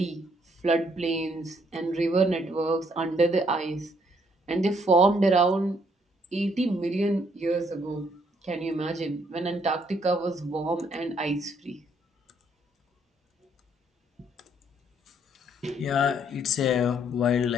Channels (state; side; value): normal; both; correlation 0.68